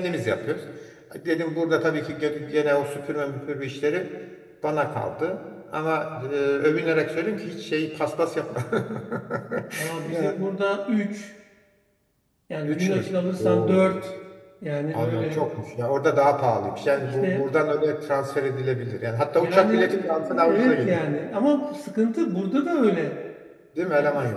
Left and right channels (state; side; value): identical; both; correlation 1.00